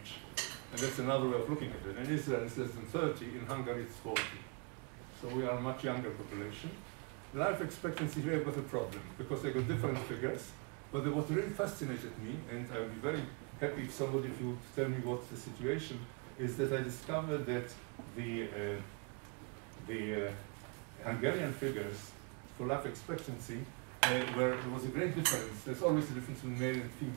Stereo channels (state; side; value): quieter; left; 33.2 dB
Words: and that's another way of looking at it. In Israel, it's less than 30. In Hungary, it's 40. So we are a much younger population. Life expectancy here, I've got a problem, because I got different figures. But what really fascinated me, and I would be very happy if somebody of you would tell me what's the situation, is that I discovered that the Hungarian figures for life expectancy, where there was a great difference. There's always a difference between male and